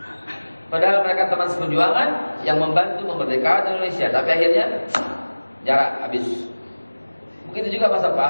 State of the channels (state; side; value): inverted; both; correlation -1.00